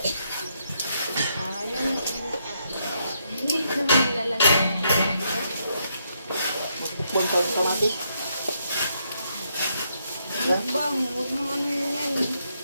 Hindi naman nilalagay. Bukbang pa yung kamatis. Mukbang. Huwag mo ano yan.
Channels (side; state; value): both; inverted; correlation -0.77